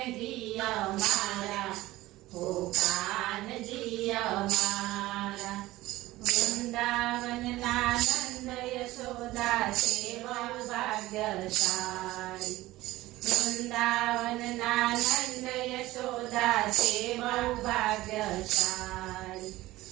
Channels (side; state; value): left; quieter; 17.5 dB